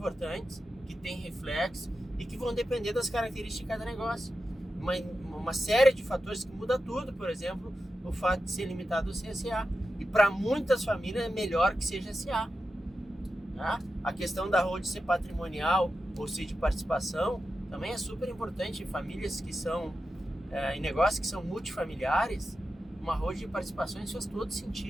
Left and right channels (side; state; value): both; normal; correlation 0.90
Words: que têm reflexo e que vão depender das características de cada negócio. Uma série de fatores que muda tudo, por exemplo, o fato de ser limitado ao CSA. E para muitas famílias é melhor que seja SA. Né? A questão da holding ser patrimonial ou ser de participação também é super importante. Em famílias que são, em negócios que são multifamiliares, uma holding de participações faz todo